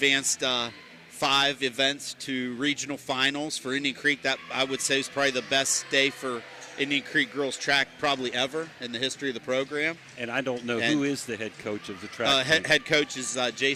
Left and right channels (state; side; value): identical; both; correlation 1.00